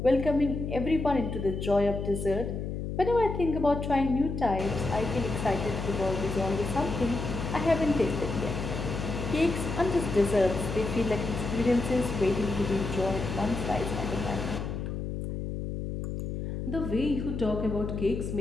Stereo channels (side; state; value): left; noise; hum, 4 dB below the sound